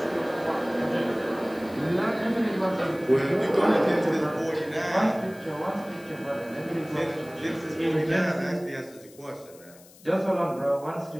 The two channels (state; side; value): noise; left; hiss, 24 dB below the sound